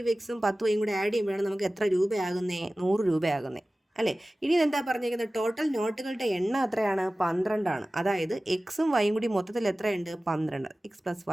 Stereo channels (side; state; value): both; normal; correlation 0.97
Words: 10y കൂടെ ആഡ് ചെയ്യുമ്പോഴാണ് നമുക്ക് എത്ര രൂപയാകുന്നേ? 100 രൂപയാകുന്നേ അല്ലേ? ഇനി എന്താ പറഞ്ഞിരിക്കുന്നത്? ടോട്ടൽ നോട്ടുകളുടെ എണ്ണം എത്രയാണ്? 12 ആണ്. അതായത് എക്സും വൈയും കൂടി മൊത്തത്തിൽ എത്രയുണ്ട്? 12. x +